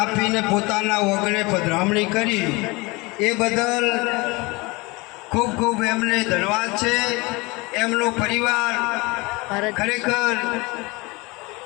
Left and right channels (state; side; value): quieter; right; 24.8 dB